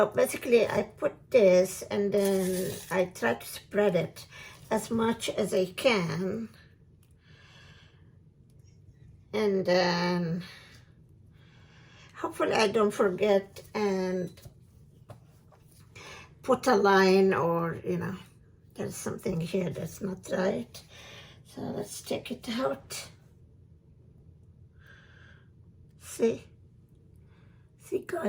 basically I put this and then I try to spread it as much as I can, and then hopefully I don't forget and put a line, or there's something here that's not right. So let's take it out. See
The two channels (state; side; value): identical; both; correlation 1.00